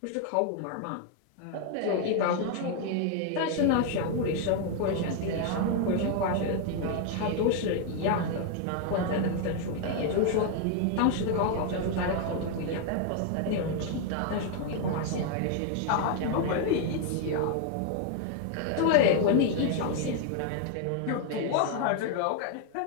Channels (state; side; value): different; both; correlation 0.00